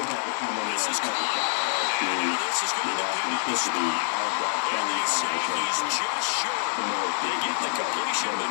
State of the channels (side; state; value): right; silent; digital silence